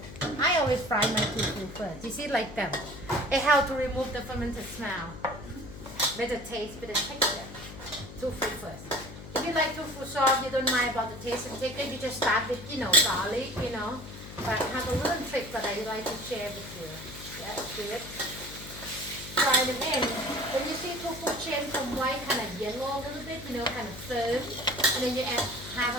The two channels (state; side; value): noise; left; hum, 13 dB below the sound